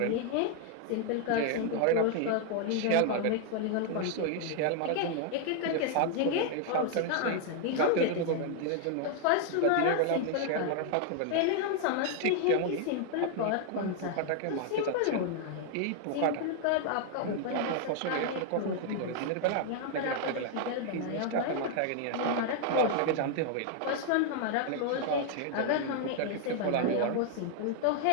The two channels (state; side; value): different; both; correlation 0.00